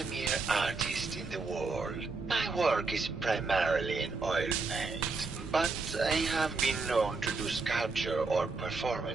artists in the world. My work is primarily in oil paint, but I have been known to do sculpture or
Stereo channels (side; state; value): left; quieter; 4.0 dB